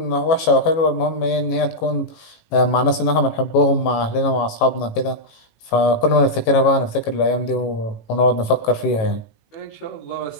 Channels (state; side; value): late; right; 18 ms